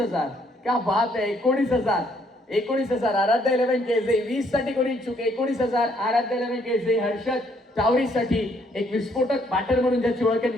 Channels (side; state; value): both; normal; correlation 0.68